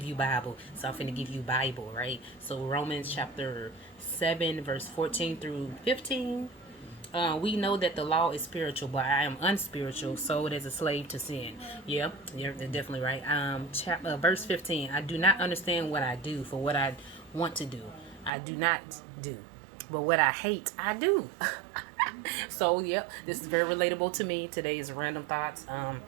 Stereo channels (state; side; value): drops out; left; at 18.3 s